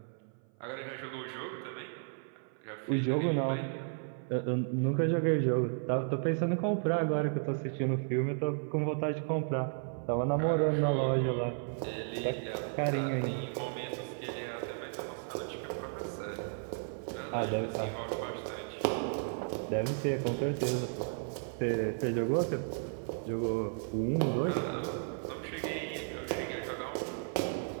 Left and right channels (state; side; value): silent; left; 55 dB below the other